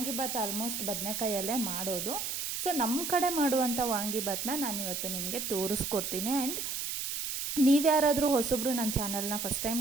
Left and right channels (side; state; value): right; noise; hiss, 3 dB below the sound